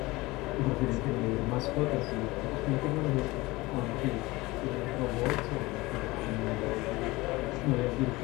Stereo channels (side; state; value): right; quieter; 21.2 dB